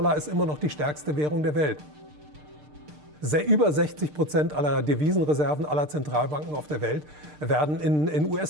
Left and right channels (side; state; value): left; late; 6.6 ms